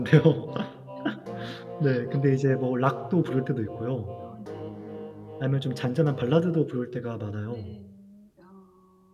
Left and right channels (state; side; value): identical; both; correlation 1.00